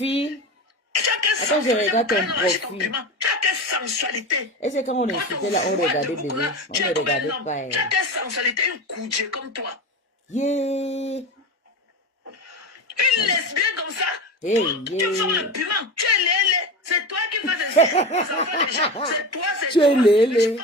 Attends, je regarde ton profil. Tu as quelle sensualité. Et c'est quand on insultait là, on regardait bébé. On ne regardait pas. Tu as quelle sensualité, une coudée comme toi. Yeah. Une lesbienne comme ça. Hey, tu vends le piment. Tu es lélé. C'est toi qui fais des enfants. C'est toi, c'est tu es lélé.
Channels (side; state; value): both; normal; correlation 0.25